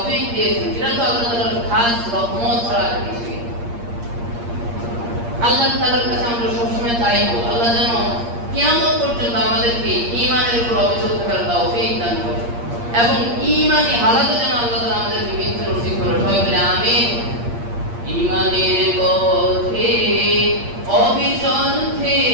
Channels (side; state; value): left; late; 8.6 ms